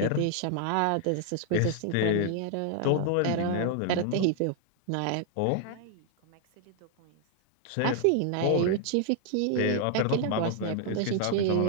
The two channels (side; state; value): both; different; correlation 0.00